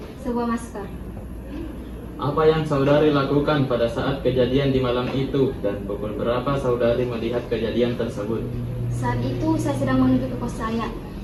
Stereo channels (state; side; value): identical; both; correlation 1.00